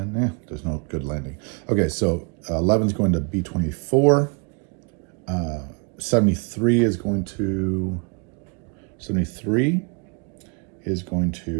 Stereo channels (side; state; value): left; quieter; 34.8 dB